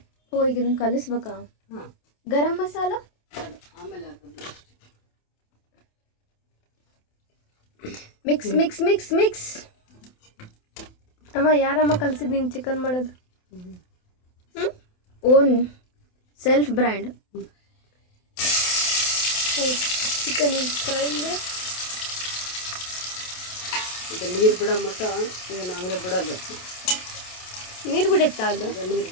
ಓ ಈಗ ಇದನ್ನು ಕಲಿಸ್ಬೇಕಾ? ಗರಂ ಮಸಾಲ ಆಮೇಲೆ ಮಿಕ್ಸ್ ಮಿಕ್ಸ್ ಮಿಕ್ಸ್ ಮಿಕ್ಸ್. ಅಮ್ಮ ಯಾರಮ್ಮ ಕಲಿಸಿದ್ ನೀನು ಚಿಕನ್ ಮಾಡೋದು? Own self brand. ಚಿಕನ್ ಫ್ರೈಂದ ಈಗ ನೀರು ಬಿಡೋ ಮಟ್ಟ ಏನು ಹಂಗೆ ಬಿಡೋದು. ನೀರು ಬಿಡುತ್ತಾ ಅದು? ನೀರು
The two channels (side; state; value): right; late; 28 ms